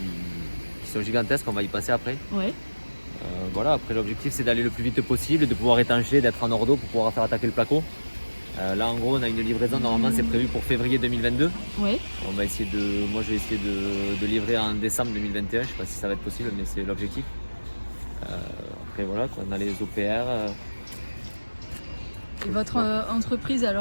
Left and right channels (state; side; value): inverted; both; correlation -1.00